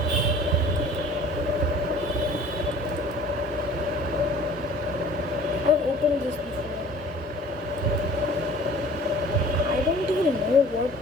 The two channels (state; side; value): normal; both; correlation 0.48